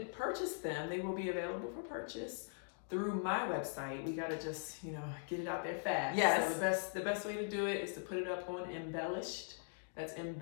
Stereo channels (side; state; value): right; silent; digital silence